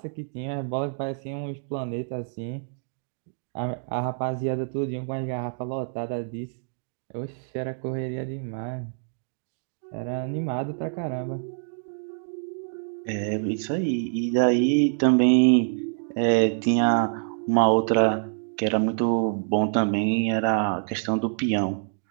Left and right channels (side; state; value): left; silent; digital silence